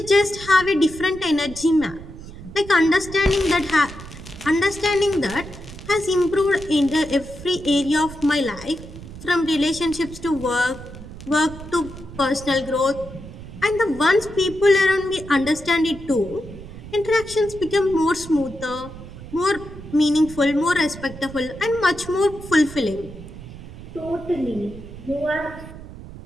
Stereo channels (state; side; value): noise; right; rumble, 14 dB below the sound